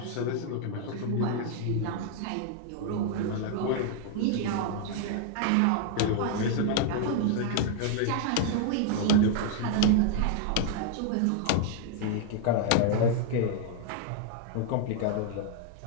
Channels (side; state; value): both; different; correlation 0.00